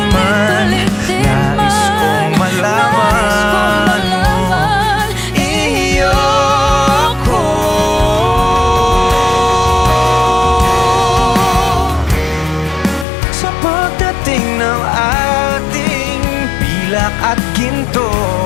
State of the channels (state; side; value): drops out; right; at 13.1 s